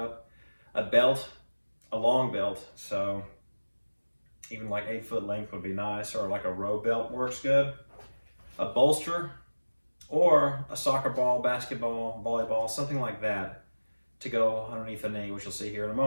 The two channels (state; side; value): inverted; both; correlation -1.00